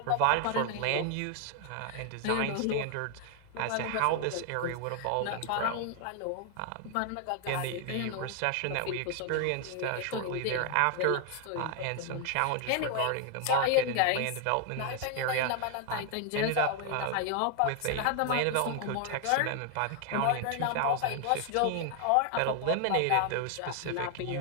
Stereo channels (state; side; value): different; both; correlation 0.00